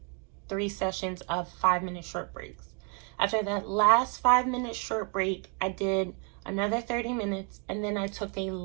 3 sessions of 5-minute short breaks. After that last 5-minute short break, I did another 30 minutes, and then I took a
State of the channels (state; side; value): quieter; left; 31.8 dB